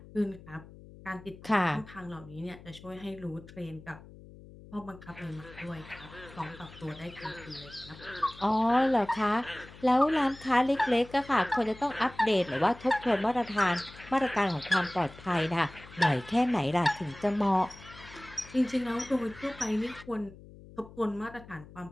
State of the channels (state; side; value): noise; left; hum, 19 dB below the sound